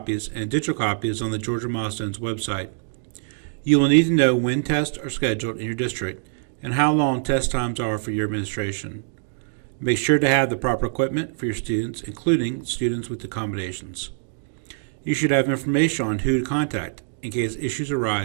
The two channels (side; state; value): left; silent; digital silence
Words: and digital copies on the Georgia Milestones website. You will need to know when tests are scheduled in your district and how long test times are for your administration. Make sure to have the proper equipment for your students, including students with accommodations. You should have information on who to contact in case issues